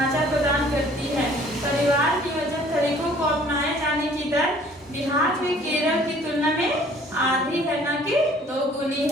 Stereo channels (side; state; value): both; normal; correlation 0.55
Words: प्रदान करती है। परिवार नियोजन तरीकों को अपनाए जाने की दर बिहार में केरल की तुलना में आधी है, न कि 2 गुनी